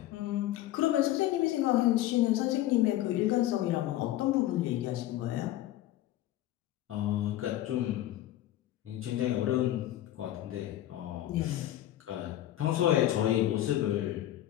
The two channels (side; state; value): right; quieter; 13.9 dB